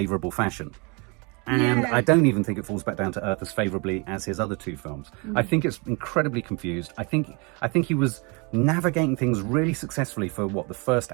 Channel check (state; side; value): quieter; left; 30.8 dB